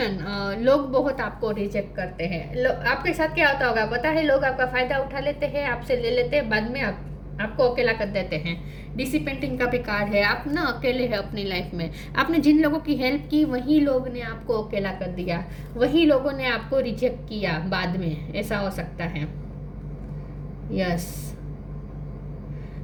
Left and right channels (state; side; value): identical; both; correlation 1.00